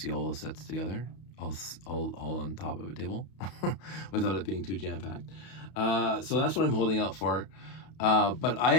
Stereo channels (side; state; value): right; late; 32 ms